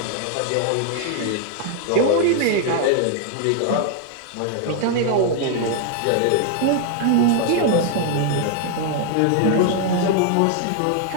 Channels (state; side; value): different; both; correlation 0.00